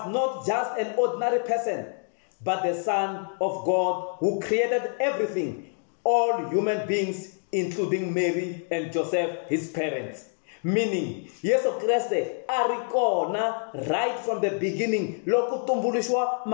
not just an ordinary person, but the Son of God who created everything, all human beings, including Mary and Joseph, his parents. Meaning, Yesu Kriste arikona right from the beginning, loku tumbulishwa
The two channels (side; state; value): right; silent; 57 dB below the other